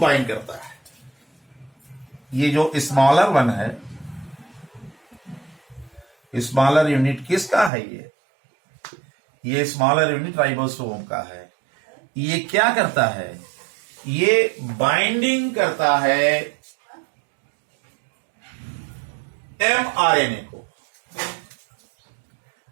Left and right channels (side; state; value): left; drops out; at 7.7 s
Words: करता है. ये जो स्मॉलर वन है, स्मॉलर यूनिट किसका है? ये स्मॉलर यूनिट राइबोसोम का है. ये क्या करता है? ये बाइंडिंग करता है एमआरएनए को.